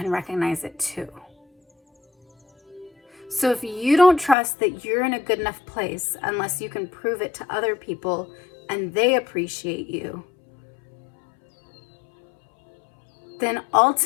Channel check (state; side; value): drops out; right; at 4.4 s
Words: recognize it too. So if you don't trust that you're in a good enough place unless you can prove it to other people and they appreciate you, then